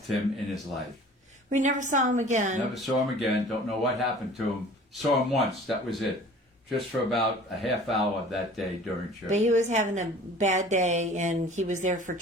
him in his life. We never saw him again. Never saw him again. Don't know what happened to him. Saw him once. That was it. Just for about a half hour that day during church. But he was having a bad day, and he was there for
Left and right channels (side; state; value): both; normal; correlation 0.46